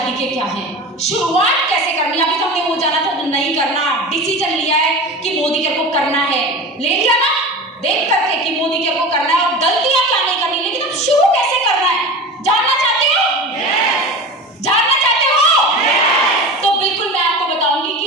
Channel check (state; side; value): normal; both; correlation 0.31